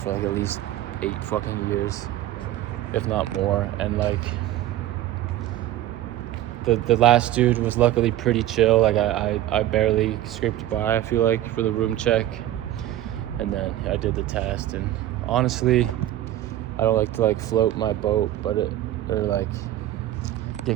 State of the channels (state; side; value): quieter; left; 13.7 dB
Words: like at least 8 fucking years, if not more. And like the last dude was luckily pretty chill. Like I barely scraped by, I feel like, for the room check. And then I did the test, and honestly, I don't like to like float my boat, or like